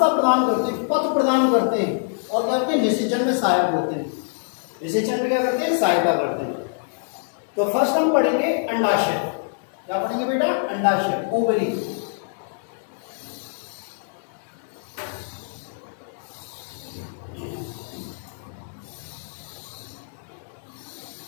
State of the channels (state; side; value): silent; right; digital silence